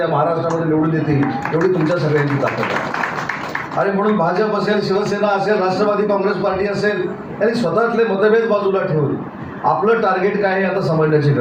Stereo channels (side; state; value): both; identical; correlation 1.00